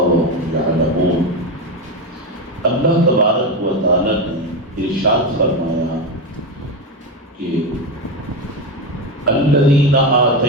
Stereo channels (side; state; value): both; normal; correlation 0.14